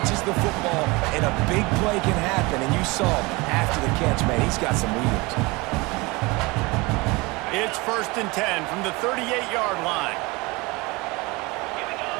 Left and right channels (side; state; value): left; quieter; 24.6 dB